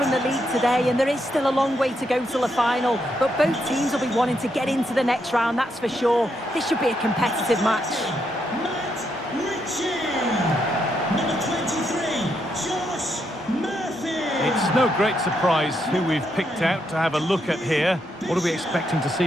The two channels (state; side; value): normal; both; correlation 0.79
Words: the league today, and there is still a long way to go till the final. But both teams will be wanting to get into the next round, that's for sure. This should be a competitive match. Matt Ritchie. Number 23, Josh Murphy. It's no great surprise who we've picked out to have a look at here. What are we expecting to